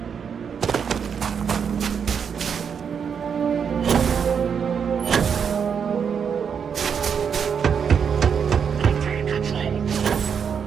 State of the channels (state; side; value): quieter; left; 7.0 dB